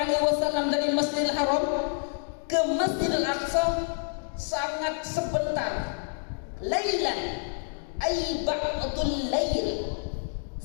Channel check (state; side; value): silent; right; 59 dB below the other